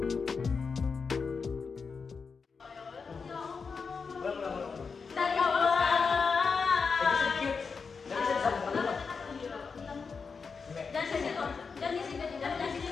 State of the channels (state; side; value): quieter; right; 5.2 dB